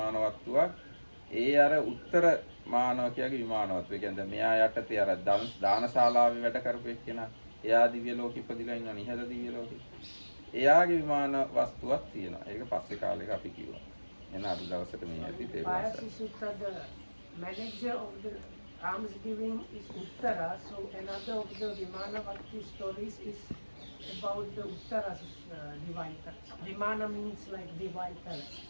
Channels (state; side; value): inverted; both; correlation -1.00